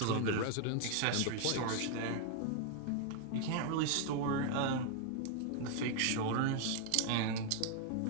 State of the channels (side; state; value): both; different; correlation 0.00